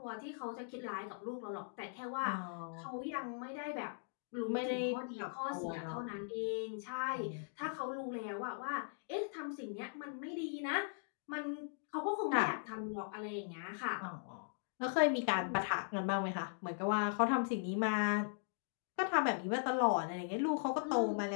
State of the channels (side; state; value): right; silent; digital silence